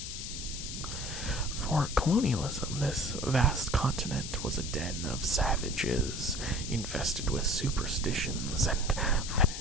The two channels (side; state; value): left; noise; hiss, 7 dB below the sound